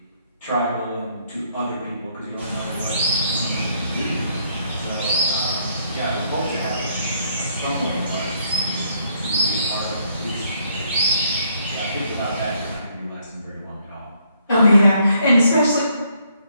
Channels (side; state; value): both; inverted; correlation -0.69